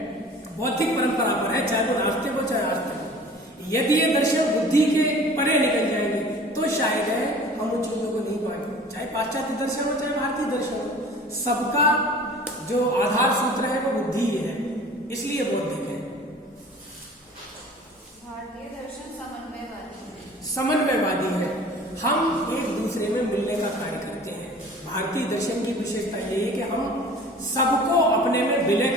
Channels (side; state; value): both; normal; correlation 0.45